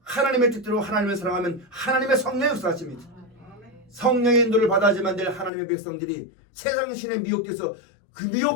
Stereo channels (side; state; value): right; drops out; at 5.5 s